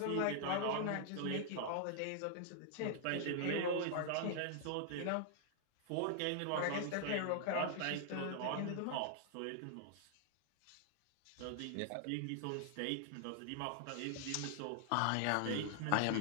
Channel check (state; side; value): different; both; correlation 0.00